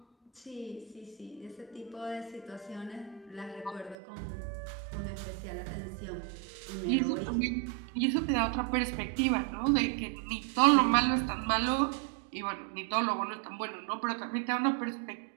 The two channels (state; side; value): drops out; left; at 4.0 s